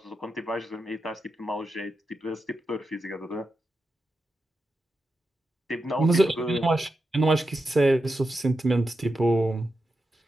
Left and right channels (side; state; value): both; normal; correlation 0.88